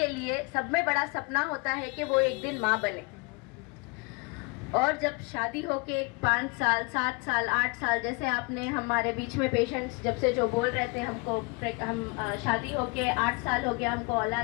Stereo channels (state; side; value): quieter; right; 28.1 dB